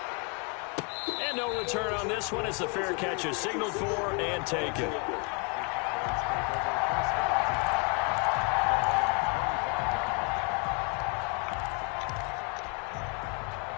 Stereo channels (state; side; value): quieter; right; 34.2 dB